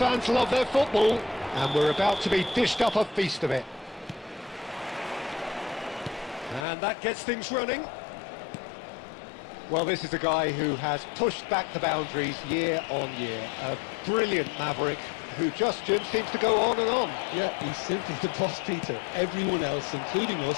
love their football, and we're about to be dished up a feast of it. And that gets things running. Well, this is a guy who has pushed back the boundaries year on year. A brilliant maverick who just seems to go on and on. Yeah, he's simply the boss, Peter. Everyone else, including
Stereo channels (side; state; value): right; drops out; at 6.7 s